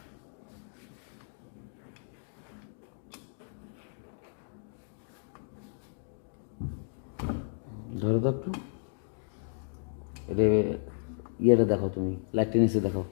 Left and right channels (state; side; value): silent; right; digital silence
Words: ধরো তো একটু, এটা ইয়েটা দেখো, তুমি লাইটটা নিচে দেখো।